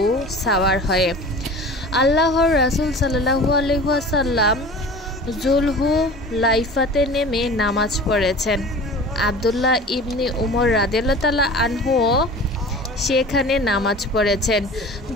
সাওয়ার হয়ে। আল্লাহর রাসূল সাল্লাল্লাহু আলাইহি ওয়াসাল্লাম যুলহুলাইফাতে নেমে নামাজ পড়েছেন। আব্দুল্লাহ ইবনে উমর রাদিয়াল্লাহু তাআলা আনহু সেখানে নামাজ পড়েছেন।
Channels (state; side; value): normal; both; correlation 0.39